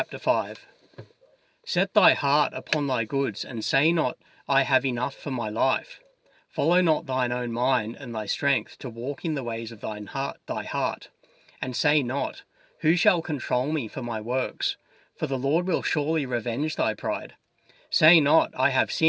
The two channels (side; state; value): both; identical; correlation 1.00